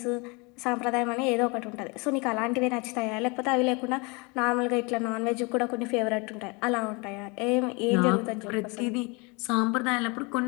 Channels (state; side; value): quieter; right; 29.1 dB